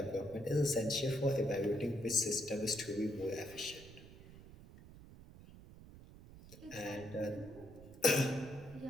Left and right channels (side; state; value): right; noise; rumble, 18 dB below the sound